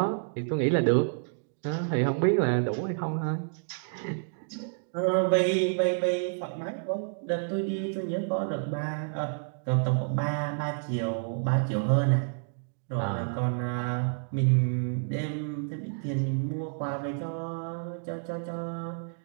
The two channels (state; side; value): silent; left; digital silence